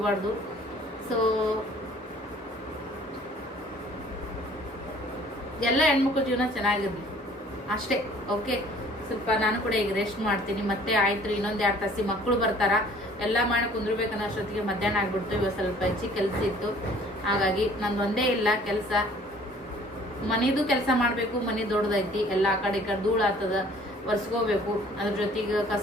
ಸೊ ಎಲ್ಲ ಹೆಣ್ಮಕ್ಳು ಜೀವನ ಚೆನ್ನಾಗಿರ್ಲಿ ಅಷ್ಟೇ. ಓಕೆ, ಸ್ವಲ್ಪ ನಾನು ಕೂಡ ಈಗ ರೆಸ್ಟ್ ಮಾಡ್ತೀನಿ. ಮತ್ತೆ ಆಯ್ತು ಇನ್ನೊಂದು 2 ತಾಸಿ ಮಕ್ಕಳು ಬರ್ತಾರ, ಎಲ್ಲ ಮಾಡಿ ಕುಂದ್ರಬೇಕನ್ನೋ ಅಷ್ಟೊತ್ತಿಗೆ ಮಧ್ಯಾಹ್ನ ಆಗ್ಬಿಡ್ತು. ಇವಾಗ ಸ್ವಲ್ಪ ಹೆಚ್ಚಿಗೆ ಕೆಲಸ ಇತ್ತು, ಹಾಗಾಗಿ ನಂದು ಒಂದೇ ಇಲ್ಲ ಕೆಲಸ. ಮನಿದು ಕೆಲಸ ಮಾಡಬೇಕು, ಮನಿ ದೊಡ್ಡದೈತಿ, ಎಲ್ಲ ಆ ಕಡೆ ಈ ಕಡೆ ಧೂಳು ಆಗ್ತದ, ಒರೆಸ್ಕೋಬೇಕು. ಅದ್ರ ಜೊತೆಗೆ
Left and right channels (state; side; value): normal; both; correlation 0.54